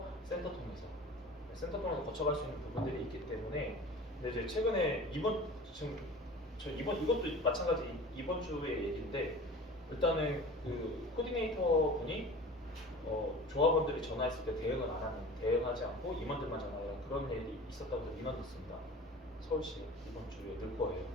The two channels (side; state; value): both; normal; correlation 0.39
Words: 센터 통해서. 센터 통해서 거쳐갈 수 있는 부분들이 있기 때문에. 근데 이제 최근에 이것도 마찬가지 이번 주의 얘기인데 일단은 그 코디네이터 분이 조합원들이 전화했을 때 대응하지 않고 임원들만 전화해요. 그런 일이 있었다고 민원 넣습니다. 서울시 이번 주에